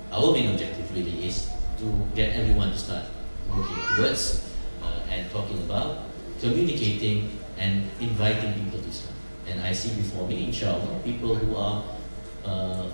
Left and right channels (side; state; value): both; inverted; correlation -1.00